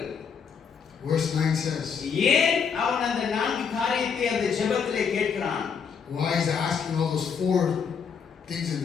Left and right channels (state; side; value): quieter; right; 6.5 dB